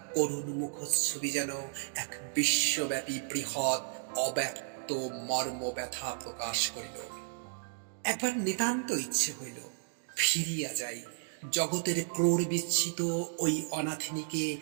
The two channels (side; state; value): left; silent; digital silence